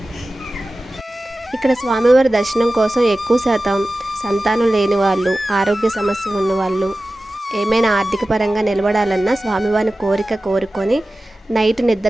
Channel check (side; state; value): both; normal; correlation 0.96